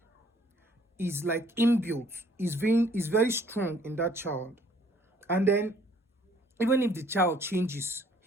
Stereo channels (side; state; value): both; normal; correlation 0.60